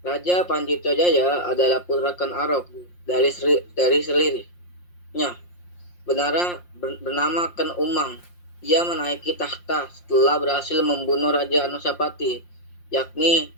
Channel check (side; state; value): right; late; 5.7 ms